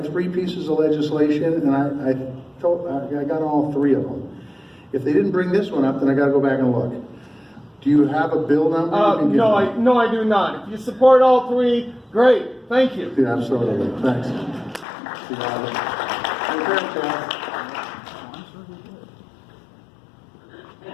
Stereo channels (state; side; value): drops out; right; at 14.9 s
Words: 3 pieces of legislation, and I got all 3 of them. If they didn't bring this one up, then I got to go back and look. Do you have a bill number? No, I do not. If you support all 3, great. Thank you. Yeah, absolutely. Thanks.